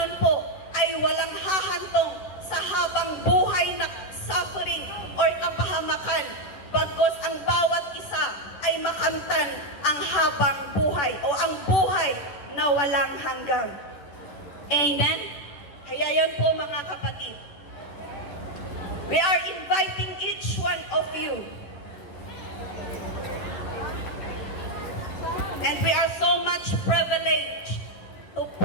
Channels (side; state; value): right; late; 11 ms